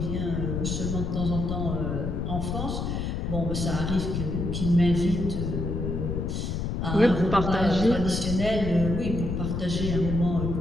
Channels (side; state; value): left; noise; rumble, 2 dB below the sound